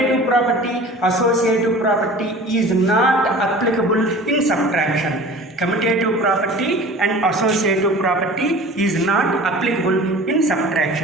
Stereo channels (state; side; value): normal; both; correlation 0.41